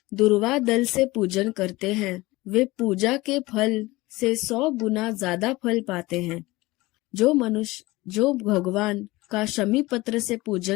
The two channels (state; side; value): quieter; right; 20.5 dB